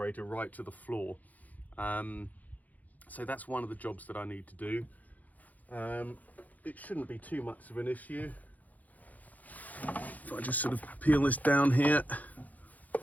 right to the floor. So that's one of the jobs that I need to do. It shouldn't be too much of an issue. If I just sort of peel this down here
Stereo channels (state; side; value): late; right; 0.079 ms